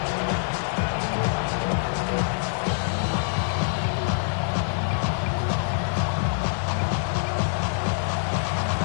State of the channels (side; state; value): right; silent; digital silence